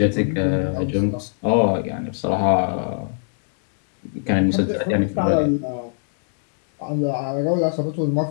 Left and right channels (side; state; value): right; silent; digital silence